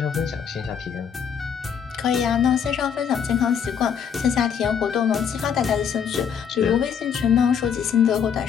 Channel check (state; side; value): quieter; right; 7.5 dB